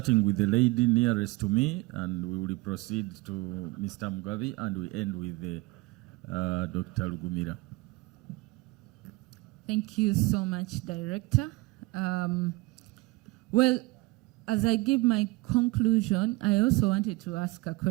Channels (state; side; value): quieter; left; 22.6 dB